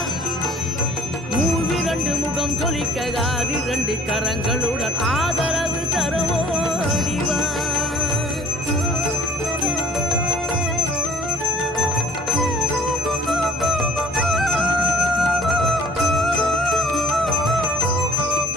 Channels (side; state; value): both; normal; correlation 0.55